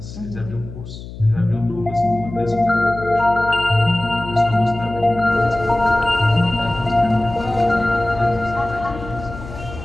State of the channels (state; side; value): noise; left; hum, 13 dB below the sound